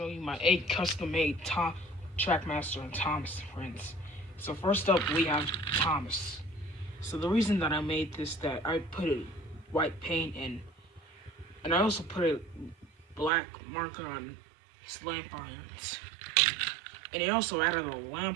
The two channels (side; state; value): left; drops out; at 13.3 s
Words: you my 8 custom-made Trackmaster and Thomas friends. So first up we have Thomas. So the reason that I made this, that I put a white paint in, and I also put a black marker on his lamp irons. And he also added a